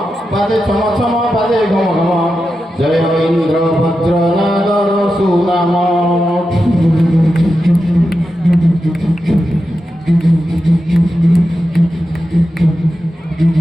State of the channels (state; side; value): normal; both; correlation 0.90